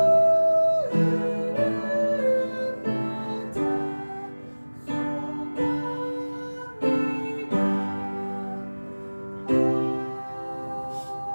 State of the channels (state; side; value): inverted; both; correlation -1.00